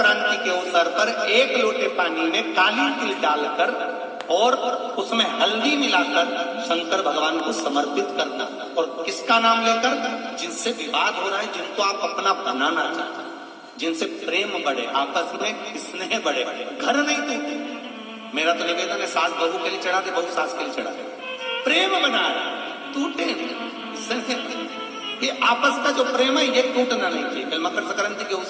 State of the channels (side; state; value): both; identical; correlation 1.00